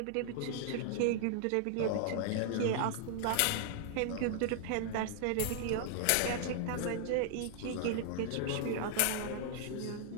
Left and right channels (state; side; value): different; both; correlation -0.01